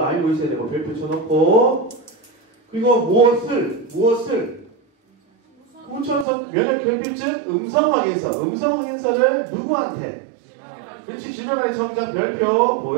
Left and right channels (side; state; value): left; drops out; at 6.2 s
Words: 있어야 되고 별표 쳐놓고, 그리고 무엇을 후천성 면역결핍증 음성 확인서를 누구한테? 그렇지, 질병관리청장 별표